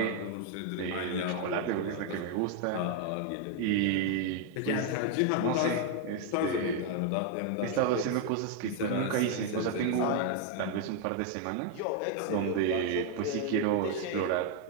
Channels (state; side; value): different; both; correlation 0.00